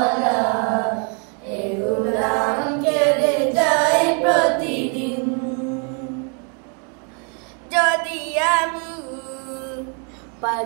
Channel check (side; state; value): left; quieter; 39.0 dB